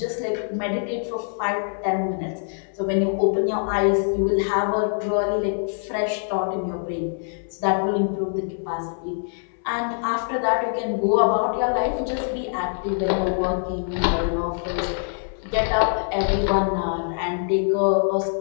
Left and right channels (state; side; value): silent; right; 63 dB below the other